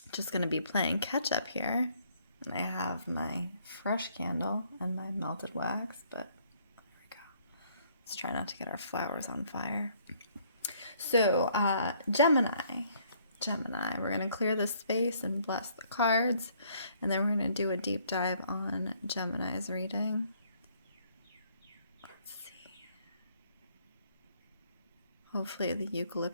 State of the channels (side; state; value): both; inverted; correlation -0.65